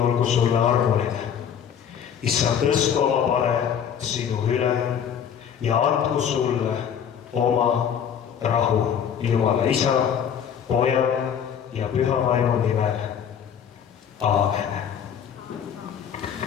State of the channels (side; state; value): right; quieter; 8.3 dB